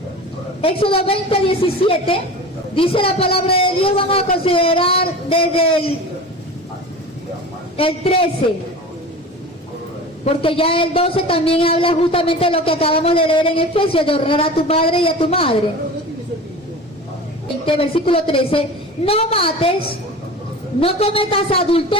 Éxodo 20:17 dice la palabra de Dios. Vamos a considerar desde el 13, porque ya el 12 también habla justamente de lo que acabamos de leer en Efesios, de honrar a tu padre y a tu madre. Versículo 13: no mates, no cometas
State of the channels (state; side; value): normal; both; correlation 0.34